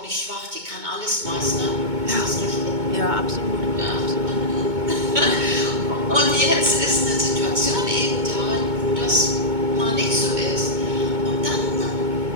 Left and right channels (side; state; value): left; late; 2.2 ms